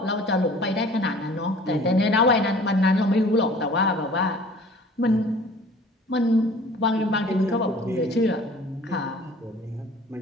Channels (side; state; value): both; normal; correlation 0.48